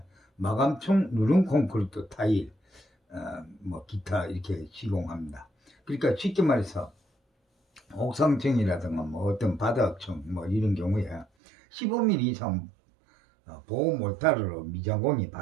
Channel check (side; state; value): left; drops out; at 11.2 s